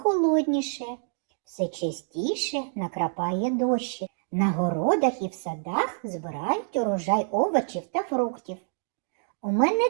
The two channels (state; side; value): silent; left; digital silence